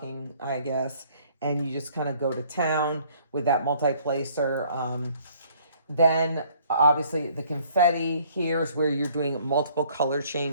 I guess. And you just kind of go to town with that multi-placer. Then obviously the confetti here is where you're doing multiple color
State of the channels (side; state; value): both; inverted; correlation -0.60